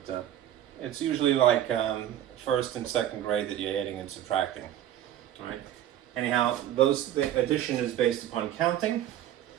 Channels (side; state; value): left; quieter; 11.8 dB